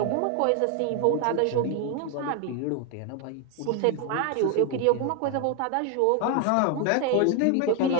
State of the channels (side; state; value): both; different; correlation 0.01